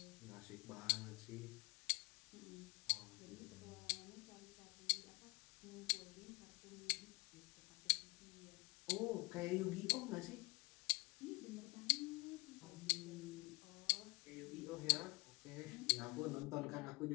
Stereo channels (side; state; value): right; quieter; 25.8 dB